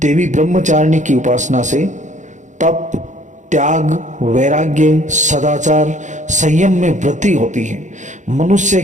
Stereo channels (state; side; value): late; left; 0.35 ms